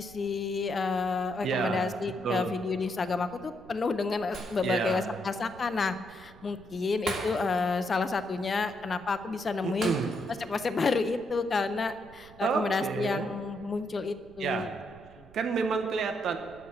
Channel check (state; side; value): noise; right; rumble, 23 dB below the sound